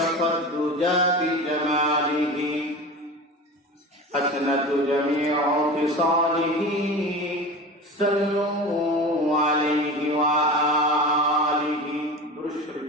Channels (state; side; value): normal; both; correlation 0.31